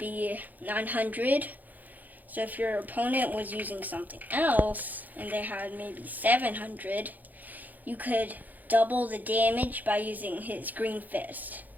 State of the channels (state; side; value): late; left; 0.082 ms